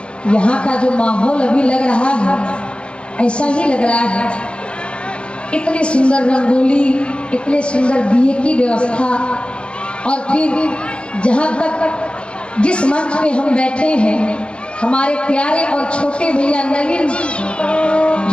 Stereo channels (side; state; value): right; late; 0.057 ms